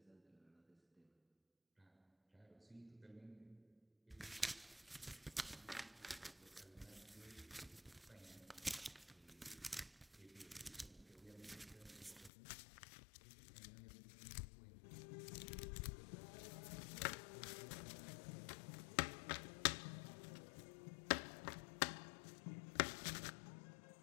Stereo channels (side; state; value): right; drops out; at 12.3 s